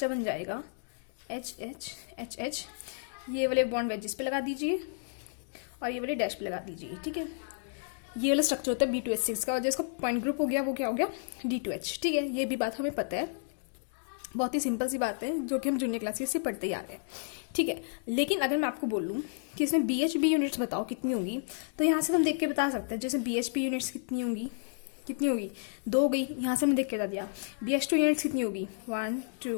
बन जाएगा HH, ये वाले बॉन्ड वेजिस पे लगा दीजिए और ये वाले डैश पे लगा दीजिए। ठीक है, ये वाला स्ट्रक्चर होता है B2S6 का, और जिसका पॉइंट ग्रुप हो गया वो क्या हो गया, D2H। ठीक है, ये भी बात हमें पता है, बहुत ही सिंपल सी बात है जो कि हम जूनियर क्लासेस से पढ़ते ही आ रहे हैं। ठीक है, लेकिन अगर मैं आपको बोलूँ कि इसमें BHP यूनिट्स बताओ कितनी होंगी, तो यहाँ से हम देख के बता सकते हैं। जैसे BHP यूनिट्स कितनी होंगी, 2 हो गई, यहाँ से हमने देख के बता दिया। BH2 यूनिट्स कितनी होगी, 1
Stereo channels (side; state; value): right; silent; digital silence